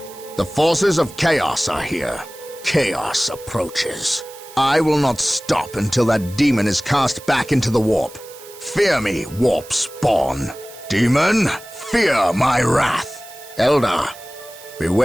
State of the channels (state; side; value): noise; right; hiss, 19 dB below the sound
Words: The forces of chaos are here. Chaos approaches. I will not stop until that demon is cast back into the warp. Fear me, warp spawn. Demon, fear my wrath. Eldar,